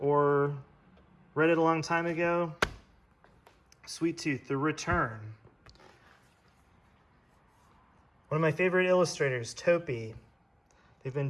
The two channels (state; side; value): identical; both; correlation 1.00